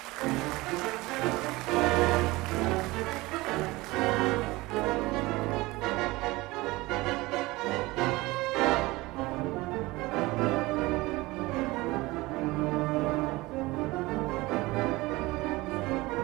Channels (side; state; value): left; quieter; 21.0 dB